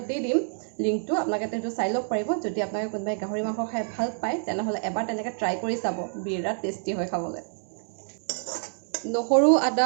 দি দিম লিংকটো, আপোনালোকে সেইটো চাই ল'ব পাৰিব। যদি আপোনালোকে কোনোবাই গাহৰি মাংস খাই ভাল পায় তেনেহ'লে এবাৰ তেনেকৈ ট্ৰাই কৰি চাব, বিৰাট টেষ্টি হয় খাবলৈ। নহৰু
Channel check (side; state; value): left; silent; digital silence